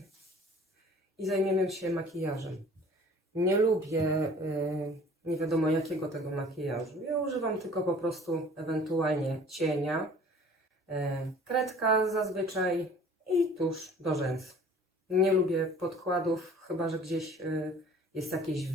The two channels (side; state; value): both; normal; correlation 0.49